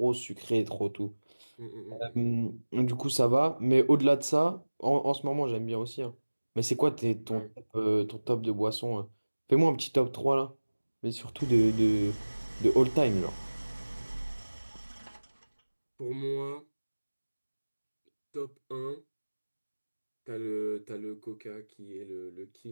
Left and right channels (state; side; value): inverted; both; correlation -1.00